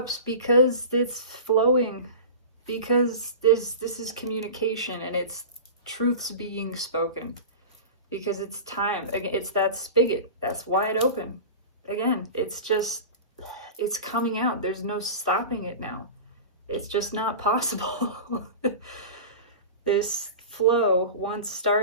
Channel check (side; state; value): both; inverted; correlation -0.32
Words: because it's flowing, because this is communication and it's truths being spoken, because it's time. It's that spigot that's wide open. Again, it's coming out. There's no stopping it now. It's just not possible. This flow, once